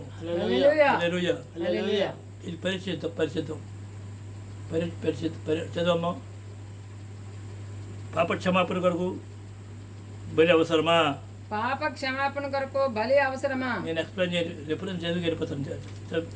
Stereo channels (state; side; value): identical; both; correlation 1.00